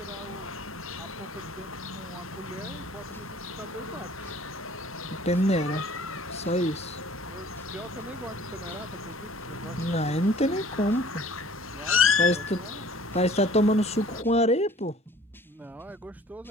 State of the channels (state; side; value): normal; both; correlation 0.51